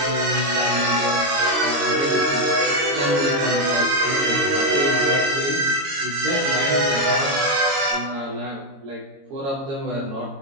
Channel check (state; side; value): late; left; 22 ms